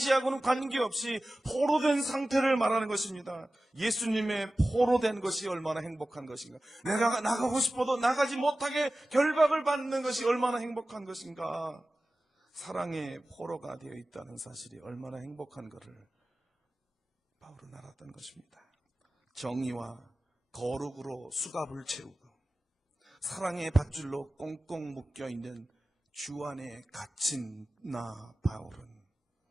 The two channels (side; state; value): both; normal; correlation 0.96